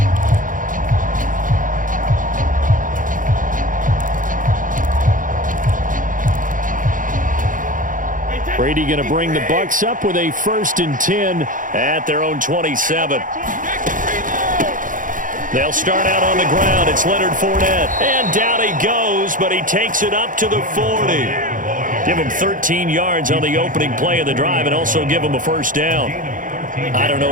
Brady going to bring the Bucs up with a 1st and 10 at their own 27. They'll start out on the ground. It's Leonard Fournette. And down he goes, but he takes it up to the 40. Give him 13 yards on the opening play of the drive and also give him a first down. I don't know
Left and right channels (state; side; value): late; left; 0.39 ms